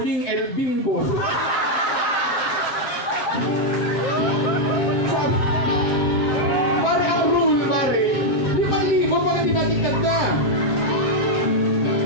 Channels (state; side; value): late; right; 7.8 ms